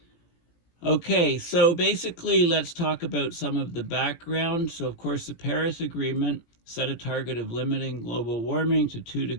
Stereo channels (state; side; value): late; right; 18 ms